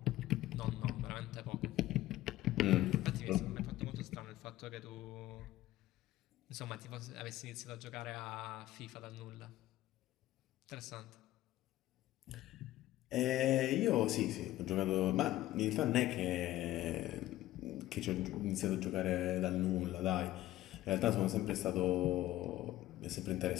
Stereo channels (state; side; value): quieter; right; 15.3 dB